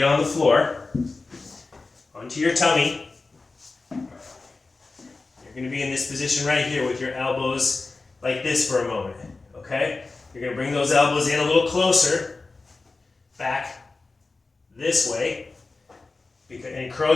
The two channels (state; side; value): quieter; right; 3.7 dB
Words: on the floor, onto your tummy. You're going to be in this position right here with your elbows like this for a moment. Okay? You're going to bring those elbows in a little closer, back this way, and